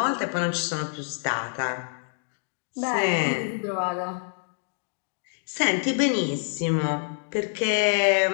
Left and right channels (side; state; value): right; silent; 60 dB below the other